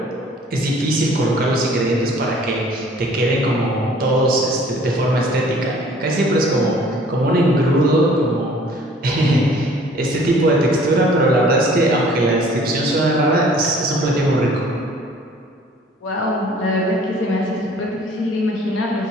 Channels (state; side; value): normal; both; correlation 0.54